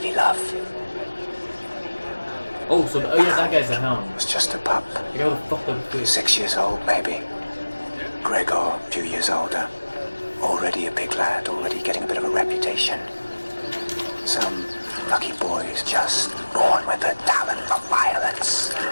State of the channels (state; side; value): inverted; both; correlation -1.00